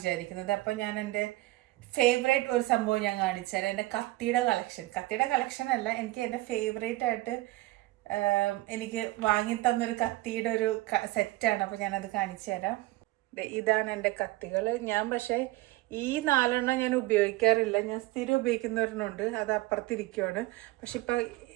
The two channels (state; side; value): quieter; left; 19.2 dB